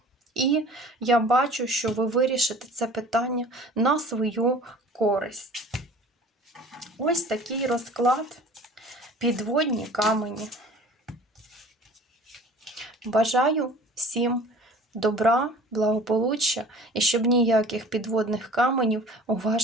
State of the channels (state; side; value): normal; both; correlation 0.46